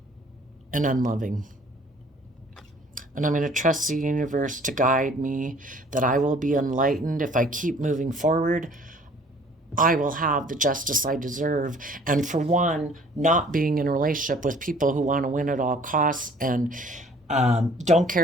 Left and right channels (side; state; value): both; normal; correlation 0.54